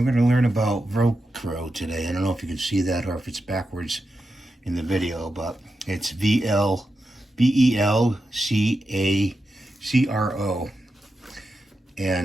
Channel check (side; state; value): both; normal; correlation 0.89